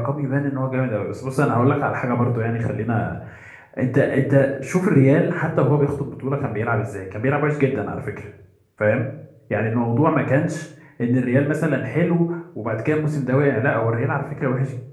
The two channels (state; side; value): identical; both; correlation 1.00